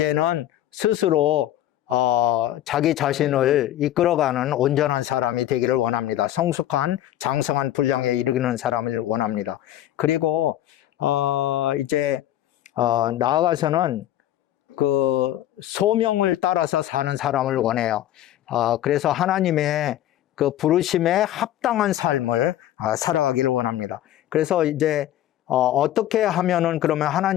스스로 자기 자신을 이끌어가는 온전한 사람이 되기를 원합니다. 성숙한, 장성한 분량에 이르는 사람을 원합니다. 그리고 이제 나아가서는 그 소명을 따라서 사는 사람을 원해요. 그래서 하나님의 그 부르심에 합당한 삶을 살아가기를 원합니다. 그래서 이제 어떻게 하면은 그러면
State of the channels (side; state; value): right; quieter; 12.9 dB